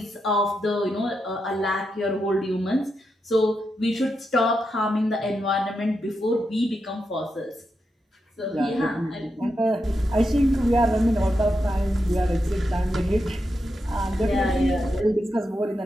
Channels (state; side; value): normal; both; correlation 0.86